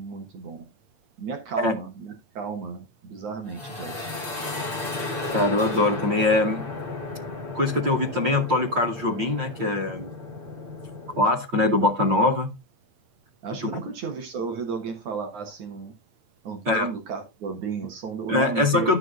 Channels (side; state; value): left; late; 8.7 ms